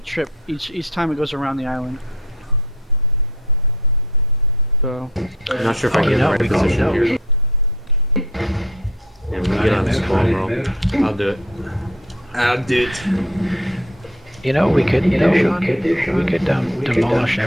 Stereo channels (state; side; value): normal; both; correlation 0.49